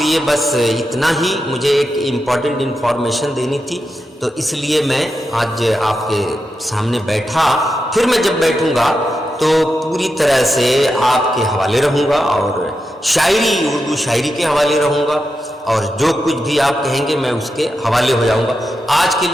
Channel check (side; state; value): both; normal; correlation 0.88